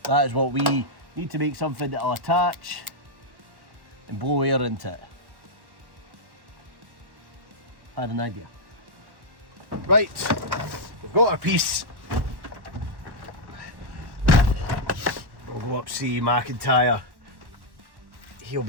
that is what we need to make something that'll attach and blow air into it. I had an idea. Right, we've got our piece. We'll go up see McIntyre. He'll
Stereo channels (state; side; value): late; left; 1.1 ms